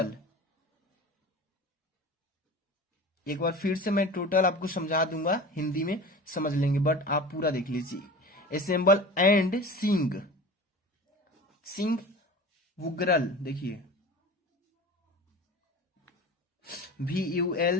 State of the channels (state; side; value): normal; both; correlation 0.36